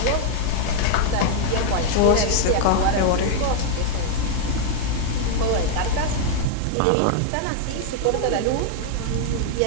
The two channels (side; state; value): both; different; correlation 0.00